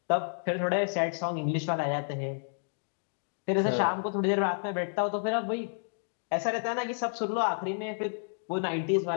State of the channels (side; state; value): right; silent; digital silence